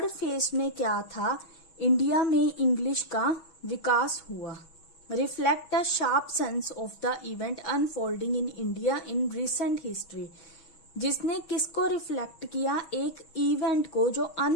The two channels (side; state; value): right; late; 6.2 ms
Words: phase में क्या था, इंडिया में इंग्लिश का विकास हुआ. Reflect a sharp sense of the event unfolding in India in recent history. जिसने किसको रिफ्लेक्ट किया, एक इवेंट को जो